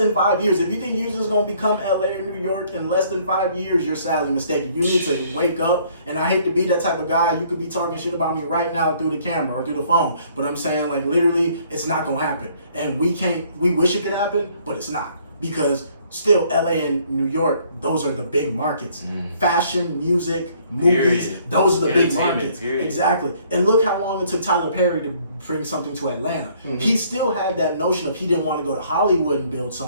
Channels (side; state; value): both; inverted; correlation -0.62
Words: 5 years, if you think Houston is gonna become LA or New York in less than 5 years, you're sadly mistaken. You need to wake up. And I hate to be that type of guy. You could be talking shit about me right now through the camera or through the phone, but I'm saying like literally, it's not gonna happen. And we wish it could happen, but it's not, because still LA and New York, those are the big markets. Fashion, music, movies, those are the big markets. Exactly. And look how long it took Tyler Perry to bring something to Atlanta. He still had that notion of he didn't want to go to Hollywood and build